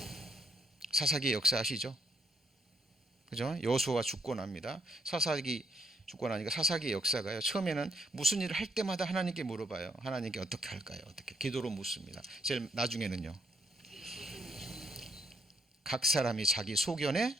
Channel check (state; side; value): normal; both; correlation 0.74